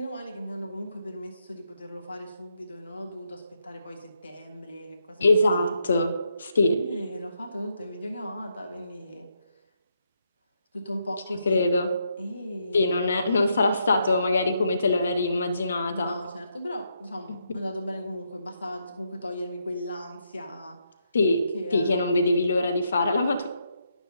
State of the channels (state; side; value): inverted; both; correlation -0.79